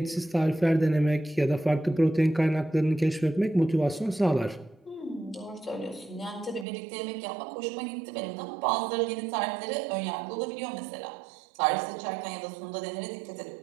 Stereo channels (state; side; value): drops out; left; at 6.7 s